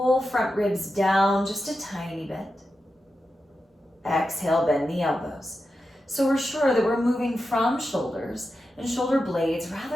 front ribs down just a tiny bit. Exhale, bend the elbows. So we're sure that we're moving from shoulders and shoulder blades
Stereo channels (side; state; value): both; normal; correlation 0.90